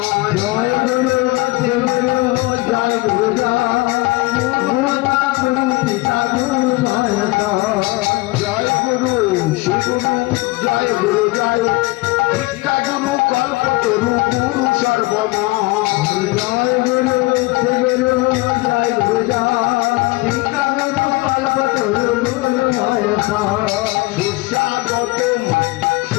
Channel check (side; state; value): right; quieter; 22.1 dB